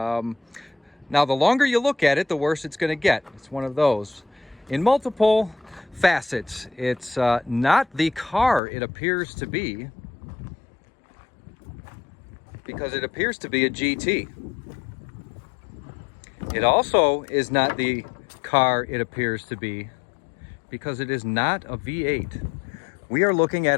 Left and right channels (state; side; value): drops out; right; at 8.6 s